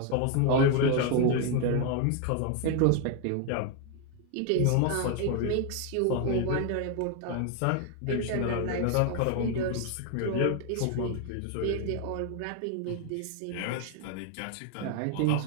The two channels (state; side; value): different; both; correlation 0.01